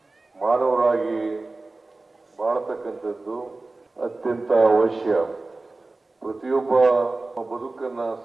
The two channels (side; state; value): left; quieter; 3.3 dB